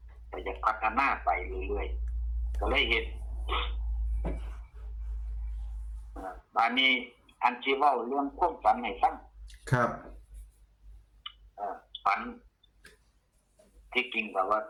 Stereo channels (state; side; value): identical; both; correlation 1.00